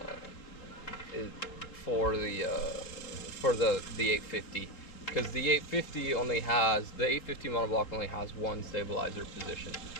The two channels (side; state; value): right; late; 3.7 ms